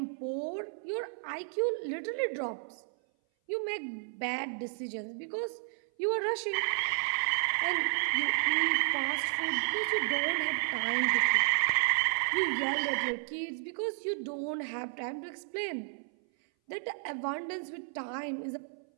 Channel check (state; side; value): silent; left; 56 dB below the other